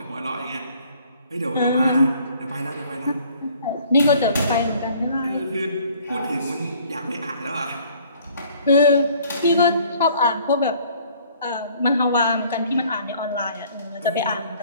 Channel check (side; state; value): both; inverted; correlation -0.57